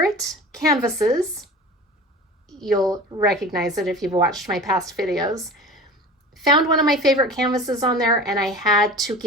canvases. You'll recognize it if you've watched my past videos. Found one of my favorite canvases on there, and I had to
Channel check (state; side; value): normal; both; correlation 0.38